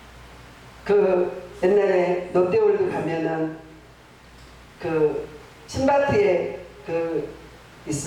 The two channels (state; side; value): identical; both; correlation 1.00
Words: 그 옛날에 롯데월드 가면은 그 신바트에 그